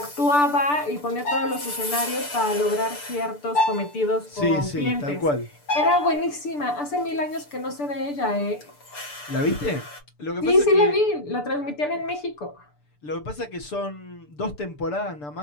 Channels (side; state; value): right; late; 6.8 ms